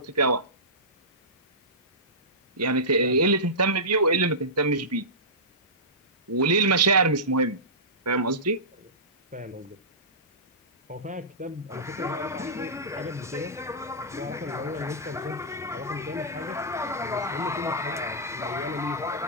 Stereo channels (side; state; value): both; normal; correlation -0.19